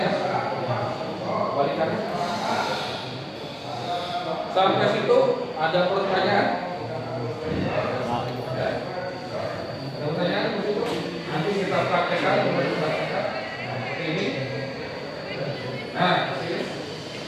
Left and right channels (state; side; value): identical; both; correlation 1.00